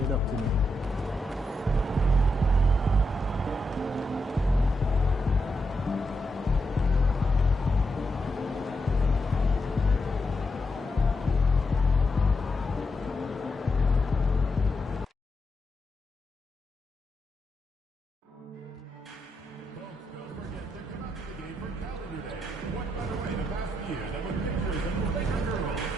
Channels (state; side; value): normal; both; correlation 0.84